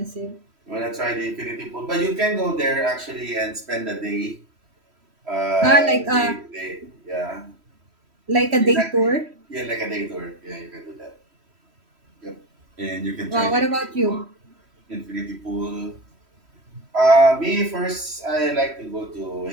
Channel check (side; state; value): left; late; 3.1 ms